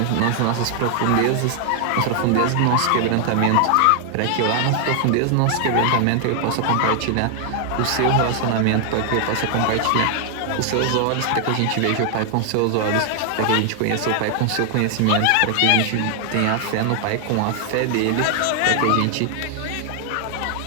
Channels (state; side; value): different; both; correlation 0.00